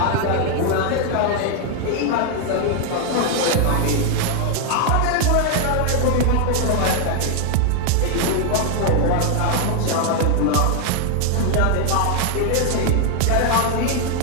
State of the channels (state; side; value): different; both; correlation 0.00